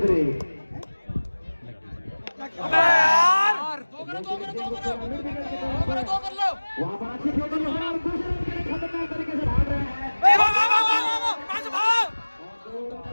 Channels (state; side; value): inverted; both; correlation -1.00